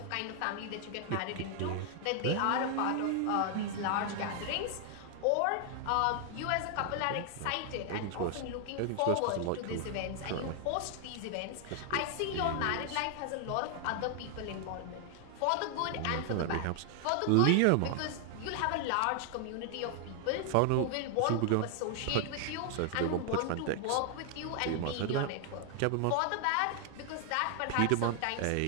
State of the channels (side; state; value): both; different; correlation 0.00